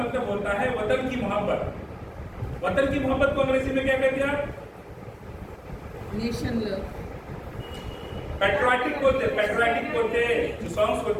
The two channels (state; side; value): identical; both; correlation 1.00